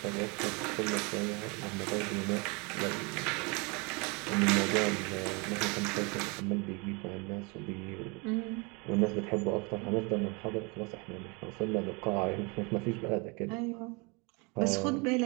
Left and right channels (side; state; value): left; quieter; 29.9 dB